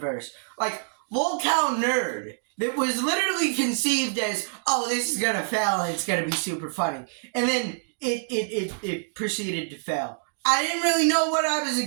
Lolcow Nerd, that was literally conceived as, oh, this is gonna fail and it's gonna be super funny. And then it proceeded to fail. I didn't really know what I was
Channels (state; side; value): silent; left; digital silence